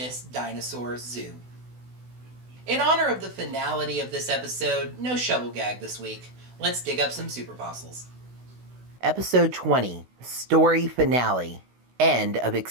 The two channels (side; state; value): left; late; 16 ms